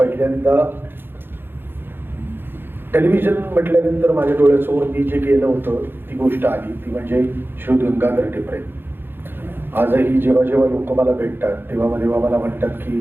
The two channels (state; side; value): late; left; 0.10 ms